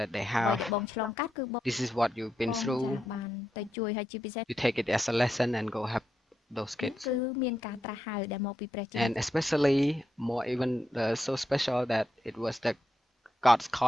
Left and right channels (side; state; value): both; normal; correlation 0.84